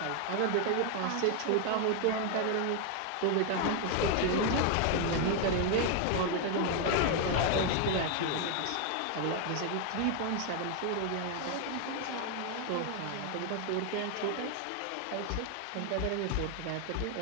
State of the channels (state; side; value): different; both; correlation 0.00